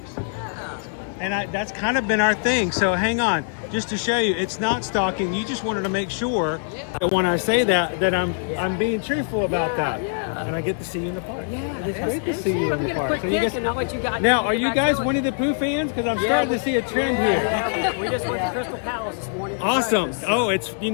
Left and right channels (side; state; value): right; silent; digital silence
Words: Yeah. And that's kind of been our thing. So hang on, just to show you, it's not stalking. You just wanted to make sure that when I say that I'm being truthful about that. Yeah. And I get to see you in the park. Yeah. It's great to see you in the park. So now, are you guys Winnie the Pooh fans? Because I'm starting to see a trend here. Yeah, we just went to Crystal Palace this morning. Awesome. Oh, it's you